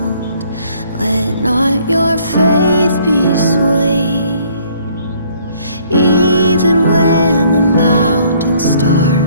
let not your faith be swayed. Even when the mountains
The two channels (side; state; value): both; inverted; correlation -0.61